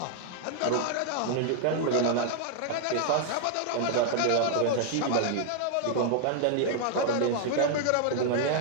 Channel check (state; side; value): different; both; correlation 0.00